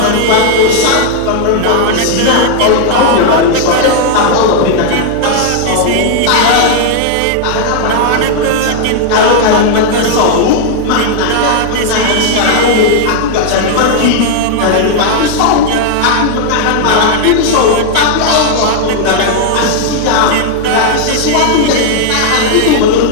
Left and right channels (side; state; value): both; different; correlation 0.00